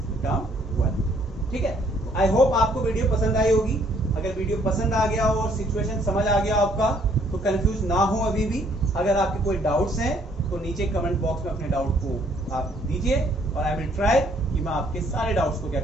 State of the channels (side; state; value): both; normal; correlation 0.64